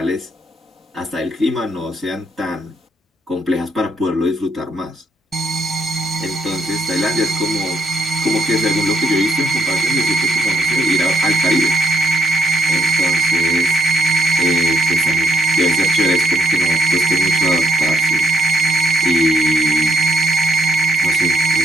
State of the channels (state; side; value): normal; both; correlation 0.73